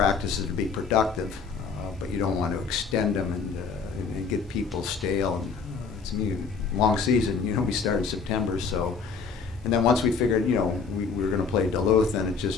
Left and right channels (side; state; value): right; quieter; 5.4 dB